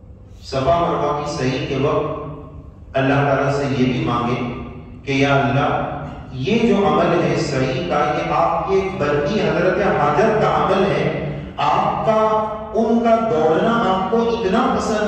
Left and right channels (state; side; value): identical; both; correlation 1.00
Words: صفا مروہ کی صحیح کے وقت اللہ تعالیٰ سے یہ بھی مانگے کہ یا اللہ یہ جو عمل ہے صحیح کا، یہ آپ کے بندی حضرت حاجر کا عمل ہے، آپ کا ان کا دوڑنا آپ کو اتنا